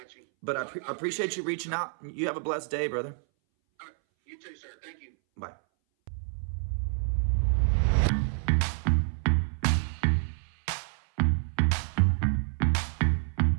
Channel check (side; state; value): left; silent; 59 dB below the other